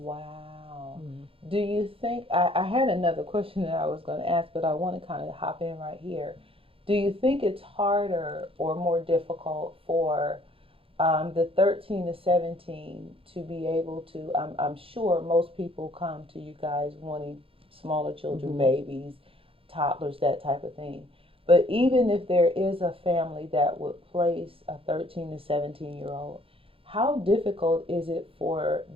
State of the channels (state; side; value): late; left; 0.27 ms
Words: Mm. Do you think, I had another question that I was going to ask, but I want to kind of hop in right here. Do you think it's harder or more difficult for the 13 to 17 to be able to? I'm sure most people come to you guys wanting smaller children, Mhm. babies, toddlers, that type of thing. But even if there is a family that would place a 13 to 17-year-old, how difficult is it for